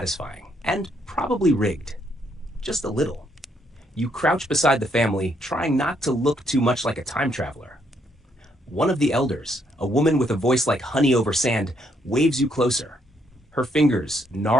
and probably rigged. Just a little. You crouch beside the family, trying not to look too much like a time traveler. One of the elders, a woman with a voice like honey over sand, waves you closer. Her fingers,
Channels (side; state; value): both; normal; correlation 0.72